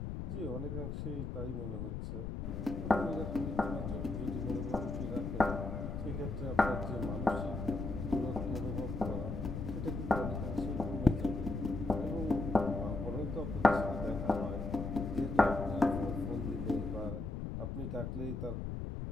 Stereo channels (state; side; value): noise; left; rumble, 4 dB below the sound